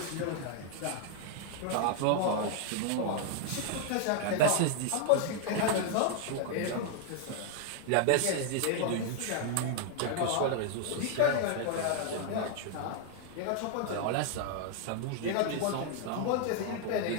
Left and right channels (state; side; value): different; both; correlation 0.00